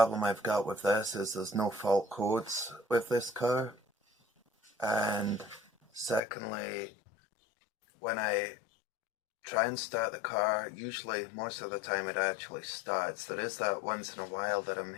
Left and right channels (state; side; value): drops out; right; at 6.2 s